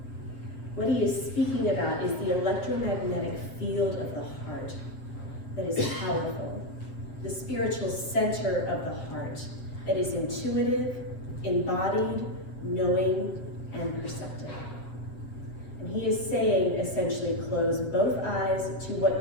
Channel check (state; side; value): late; right; 7.5 ms